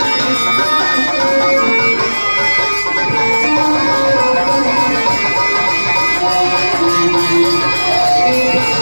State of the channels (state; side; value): inverted; both; correlation -1.00